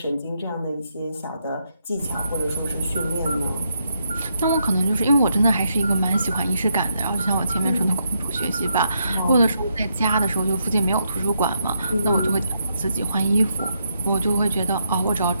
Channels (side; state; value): both; inverted; correlation -0.79